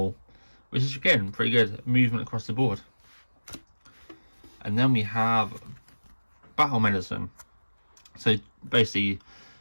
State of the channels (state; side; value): inverted; both; correlation -1.00